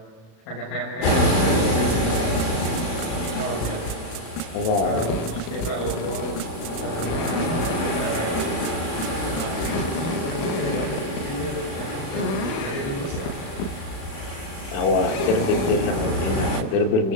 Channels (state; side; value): late; right; 36 ms